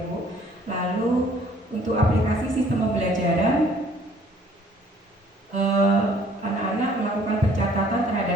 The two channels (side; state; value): both; normal; correlation 0.58